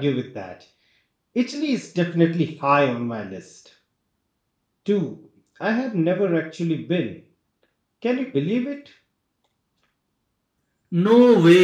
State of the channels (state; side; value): identical; both; correlation 1.00